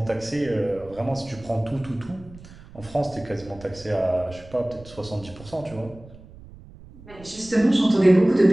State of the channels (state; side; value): noise; right; rumble, 20 dB below the sound